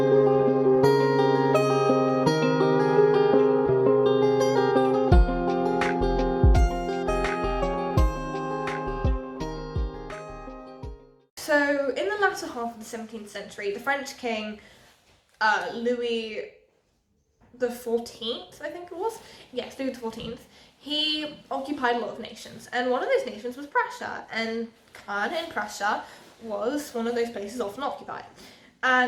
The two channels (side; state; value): both; identical; correlation 1.00